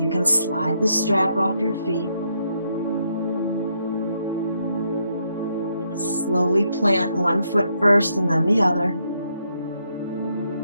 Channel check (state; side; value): inverted; both; correlation -0.76